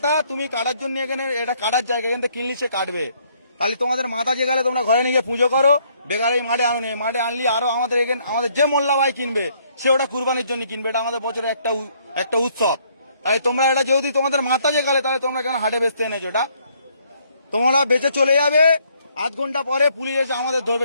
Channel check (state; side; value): inverted; both; correlation -0.67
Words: তুমি কাটার জন্য, এখানে এটা কাটার জায়গা, এখান থেকে কিনলি সে কাটবে। তাহলে তোমাদের মাথা যে গেলে তোমরা ঘরে নিয়ে পুজো করো, বেকার এই মাঠে আনুনি। মাঠে আনলি আরো আমাদের এখানে আমাদের যে মোল্লা ভাই কিনবে সে ওটা কুরবানির জন্য কিনবে। এটা আমাদের বছরের একটা উৎসব। তাই তোমরা এটা যেহেতু তোমাদের মাথা যে গেলে, তাহলে তোমরা কেন হাটে বেচতে এনেছো? এটা তোমরা বেচে চলে যাবে, আধ ঘন্টা পরে পুলিশ এসে আমাদের ধরবে